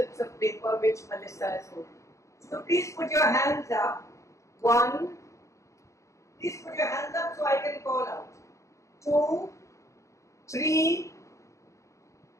of paper which Melissa has holding. So please put your hands up. 1. Please put your hands up so I can call out. 2, 3.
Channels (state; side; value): late; right; 0.15 ms